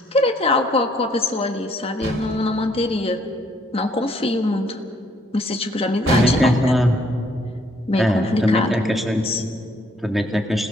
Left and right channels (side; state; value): both; normal; correlation 0.66